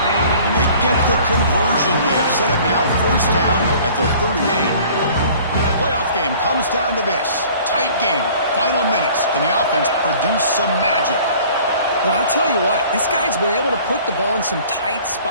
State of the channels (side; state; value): both; inverted; correlation -0.50